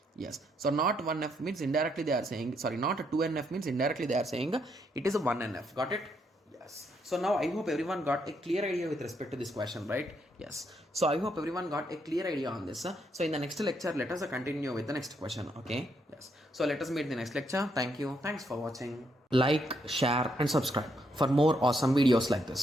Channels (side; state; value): both; normal; correlation 0.75